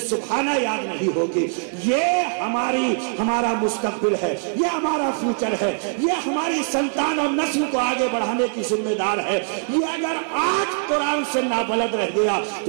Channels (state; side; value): silent; left; 61 dB below the other